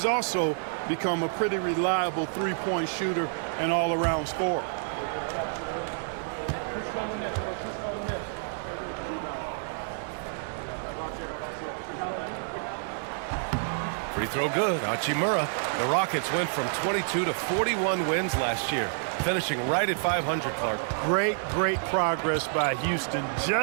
also become a pretty reliable 3-point shooter and all-around scorer. Free throw good. Hachimura. The Rockets went from 22 to 41 wins last year, finishing right at 500, Clark. Great progress by Houston.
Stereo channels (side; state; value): left; silent; digital silence